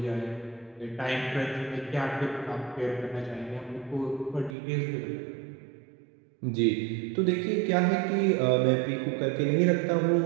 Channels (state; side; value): drops out; left; at 4.5 s